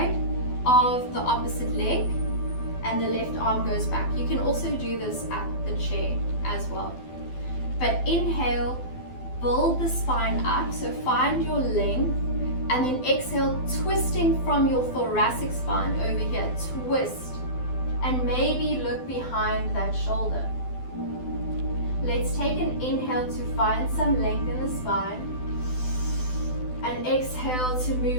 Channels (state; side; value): late; right; 12 ms